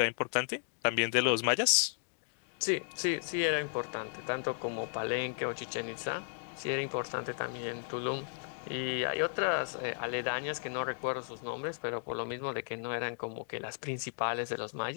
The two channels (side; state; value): right; silent; digital silence